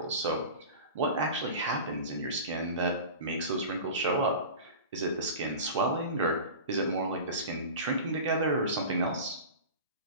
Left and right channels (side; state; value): both; inverted; correlation -0.33